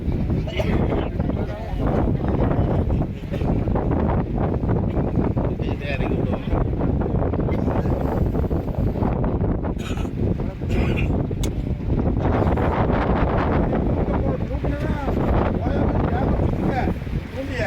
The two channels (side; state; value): both; identical; correlation 1.00